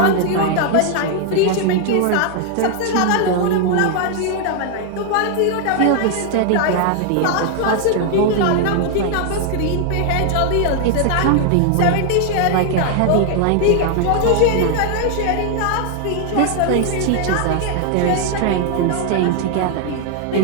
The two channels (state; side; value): different; both; correlation 0.00